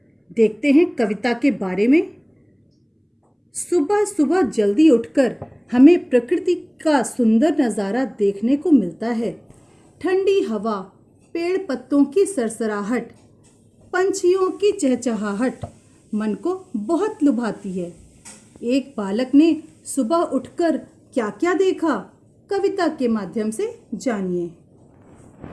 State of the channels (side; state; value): both; identical; correlation 1.00